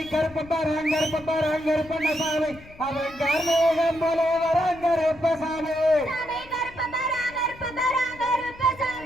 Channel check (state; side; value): noise; left; rumble, 21 dB below the sound